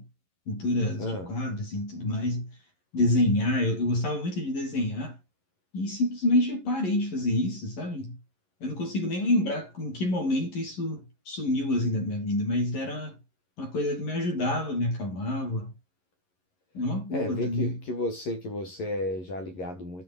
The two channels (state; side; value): late; right; 11 ms